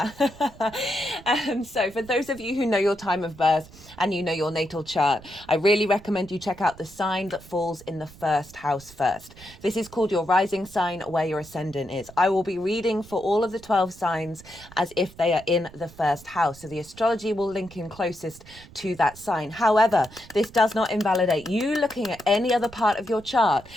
for those of you who know your time of birth and you know your natal chart, I really recommend you check out the sign that falls in the first house first. This is called your rising sign, where your ascendant is. I will be reading for all of the 12 signs as if they are in the first house. So the astrology will link in closest to that sign. However, this does not invalidate you looking at any other part of your chart,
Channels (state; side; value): noise; right; rumble, 21 dB below the sound